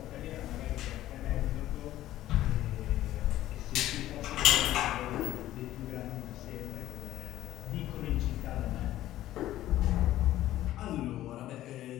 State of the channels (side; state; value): right; quieter; 14.1 dB